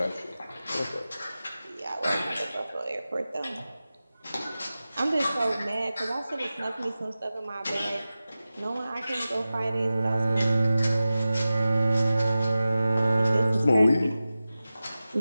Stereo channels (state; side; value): inverted; both; correlation -0.95